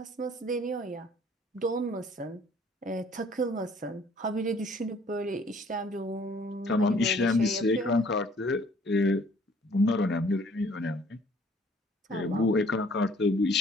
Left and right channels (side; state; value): both; normal; correlation 0.57